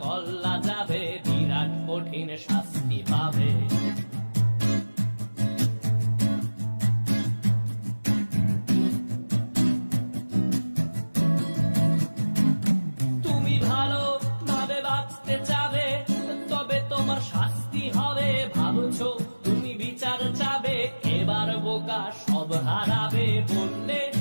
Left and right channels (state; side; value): inverted; both; correlation -1.00